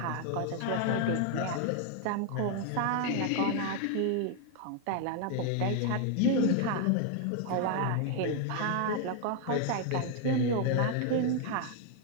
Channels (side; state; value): both; different; correlation 0.00